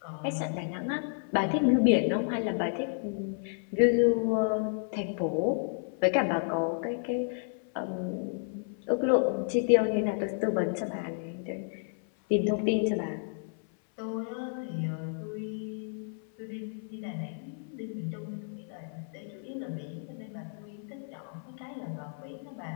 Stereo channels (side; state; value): right; silent; 55 dB below the other